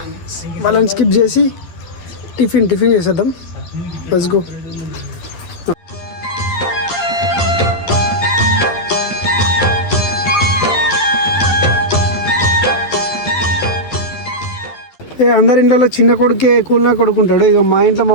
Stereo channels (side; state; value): right; late; 12 ms